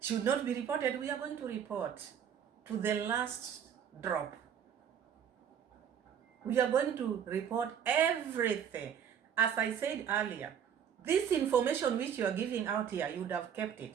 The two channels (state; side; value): quieter; left; 8.4 dB